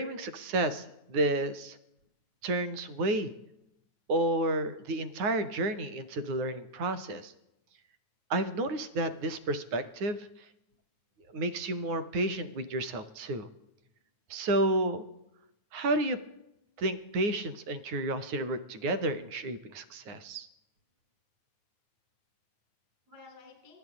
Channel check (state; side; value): late; left; 9.6 ms